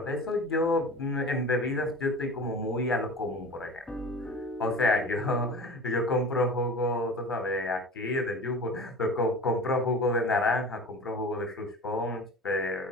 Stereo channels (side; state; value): both; normal; correlation 0.36